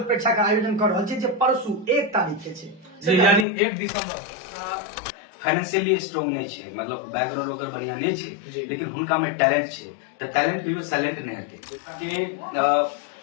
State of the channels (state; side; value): drops out; right; at 3.5 s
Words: परीक्षा का आयोजन कर रहल छी जे परसू 1 तारीख के छे जी, यानी 1 दिसंबर। फाइनेंशियली स्ट्रांग नहीं छे, मतलब बैकग्राउंड ओकर बढ़िया नहीं छे, लेकिन हुनका में टैलेंट छे। त टैलेंट कहियो साइलेंट नहीं हेते के